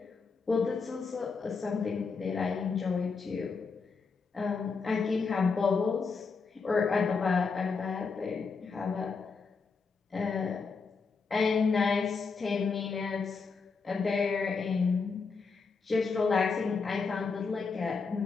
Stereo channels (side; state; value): right; quieter; 4.9 dB